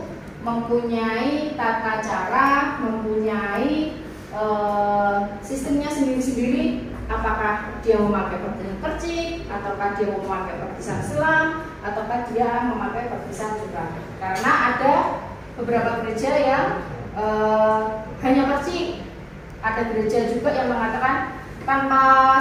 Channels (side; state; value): both; identical; correlation 1.00